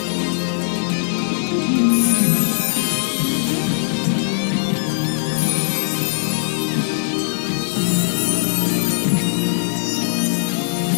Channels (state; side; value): silent; right; digital silence